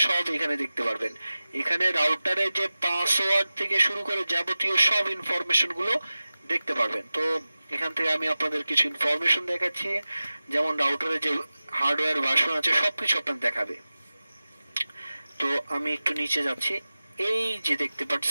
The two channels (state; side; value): inverted; both; correlation -0.96